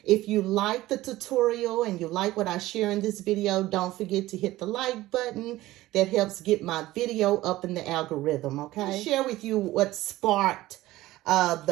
If you like the tutorial and you like what I share in this video, don't forget to hit the like button. That helps get my video up in the algorithm, okay? I'll share with you what sparked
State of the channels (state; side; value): quieter; left; 16.8 dB